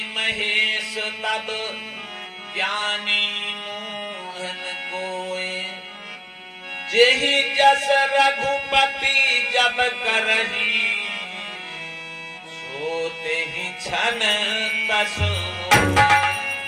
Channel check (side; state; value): both; identical; correlation 1.00